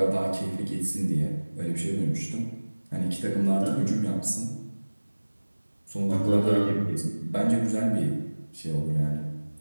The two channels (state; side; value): inverted; both; correlation -1.00